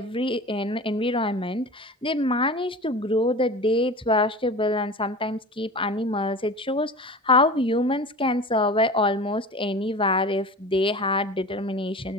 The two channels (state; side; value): normal; both; correlation 0.34